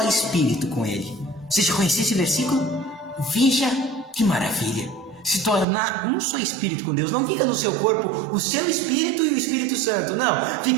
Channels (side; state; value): left; drops out; at 5.7 s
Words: espírito com Ele. Você já conhecia esse versículo? Veja que maravilha! Se tornar um só espírito com Deus. Não fica no seu corpo o seu espírito e o Espírito Santo. Não,